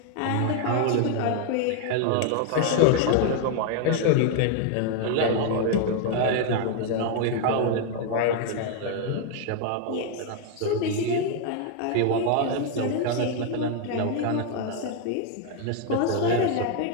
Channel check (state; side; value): different; both; correlation 0.00